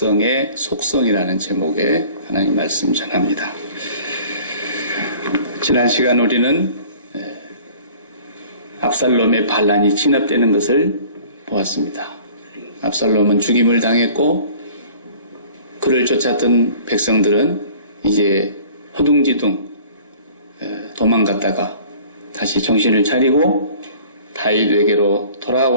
속성이라는 제목의 하나님 말씀 전합니다. 지난 시간 우리는 압살롬의 반란이 진압되는 것을 보았습니다. 압살롬은 죽임을 당했고 그를 쫓았던 백성들은 이제 허둥지둥 도망갔다가 다시 정신을 차리고 다윗에게로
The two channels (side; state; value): both; inverted; correlation -0.48